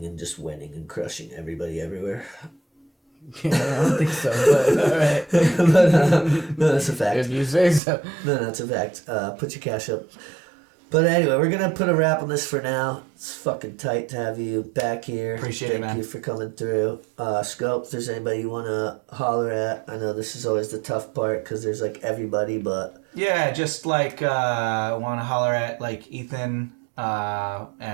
and just winning and crushing everybody everywhere. Yeah, I don't think so, but all right. But, no, that's a fact. If you say so. No, that's a fact. Put your cash up. But anyway, we're going to put a wrap on this for now. It's fucking tight to have you back here. Appreciate it, man. Thank you for coming through. Skope, if there's anybody you want to holler at, I know this is always the tough part because there's like everybody, but... Yeah, just like want to holler at like Ethan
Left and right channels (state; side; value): drops out; left; at 7.8 s